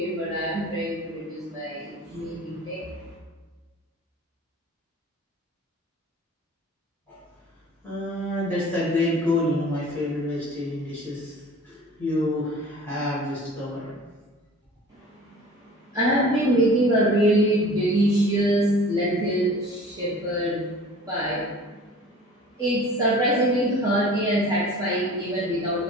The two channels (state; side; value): normal; both; correlation 0.44